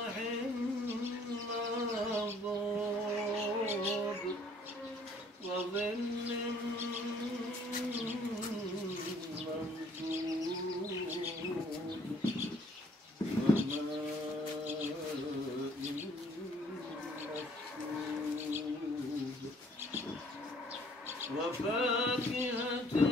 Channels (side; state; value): both; normal; correlation 0.60